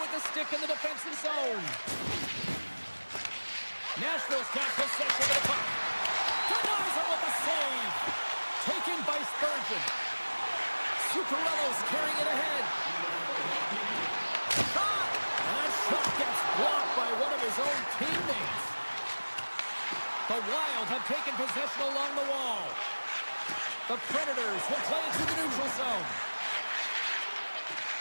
with the stick in the defensive zone. Nashville's got possession of the puck. Denies him with the save. Taken by Spurgeon. Zuccarello's carrying it ahead. Shot! And that shot gets blocked by one of his own teammates. The Wild have taken possession along the wall. The Predators will play it through the neutral zone.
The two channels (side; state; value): both; inverted; correlation -1.00